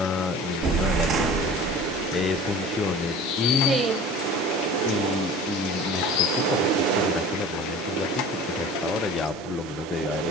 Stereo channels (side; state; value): both; normal; correlation 0.40